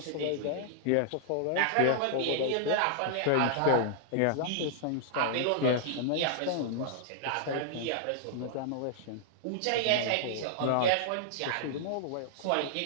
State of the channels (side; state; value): both; different; correlation -0.01